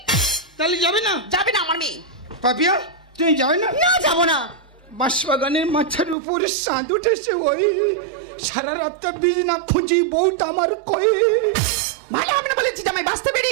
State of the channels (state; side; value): drops out; left; at 6.2 s